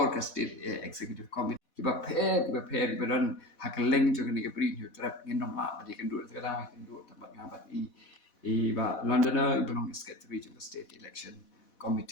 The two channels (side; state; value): right; late; 4.1 ms